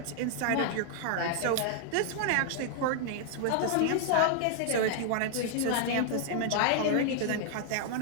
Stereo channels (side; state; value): both; different; correlation 0.00